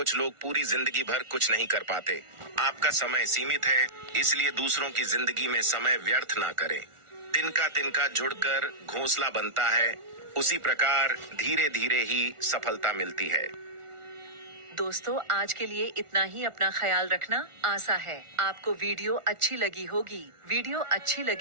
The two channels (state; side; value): late; left; 1.4 ms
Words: लोग पूरी जिंदगी भर कुछ नहीं कर पाते। आपका समय सीमित है, इसलिए दूसरों की जिंदगी में समय व्यर्थ ना करें। तिनका तिनका जुड़कर घोंसला बनता है, उसी प्रकार धीरे धीरे ही सफलता मिलती है। दोस्तों, आज के लिए इतना ही। अपना ख्याल रखना। आशा है आपको वीडियो अच्छी लगी होगी। वीडियो अच्छी